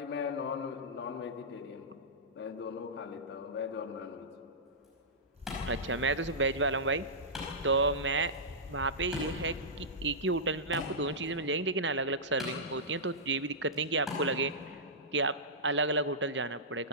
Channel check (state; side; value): normal; both; correlation -0.15